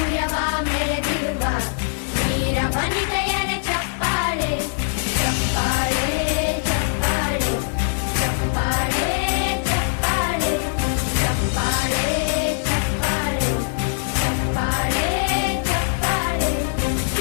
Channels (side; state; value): right; silent; digital silence